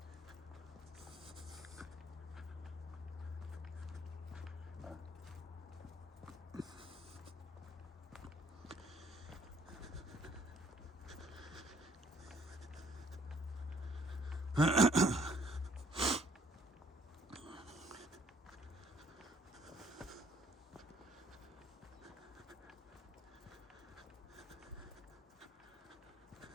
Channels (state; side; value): normal; both; correlation 0.63